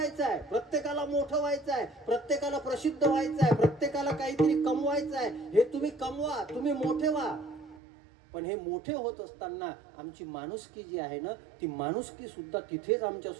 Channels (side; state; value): left; drops out; at 7.8 s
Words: आहे. प्रत्येकाला मोठं व्हायचं आहे. प्रत्येकाला प्रसिद्ध व्हायचं आहे. प्रत्येकाला काहीतरी कमवायचं आहे. हे तुम्ही कमवा, तुम्ही मोठे व्हा. पण हे मोठे होत असताना आमची माणुसकी जी आहे ना, ती माणुसकी सुद्धा तिथेच आमच्या